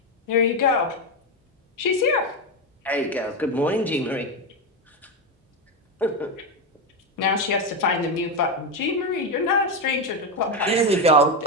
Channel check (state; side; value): normal; both; correlation 0.10